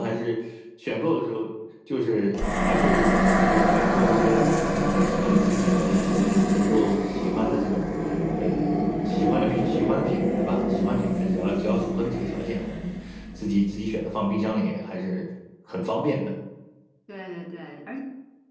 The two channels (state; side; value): identical; both; correlation 1.00